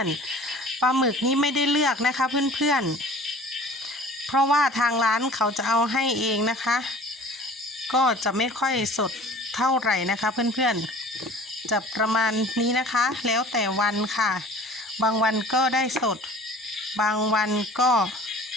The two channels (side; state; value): both; normal; correlation 0.45